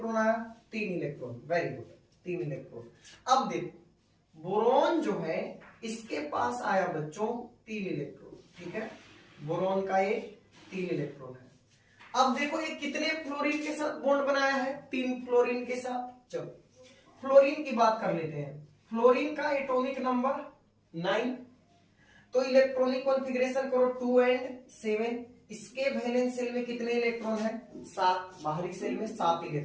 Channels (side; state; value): both; identical; correlation 1.00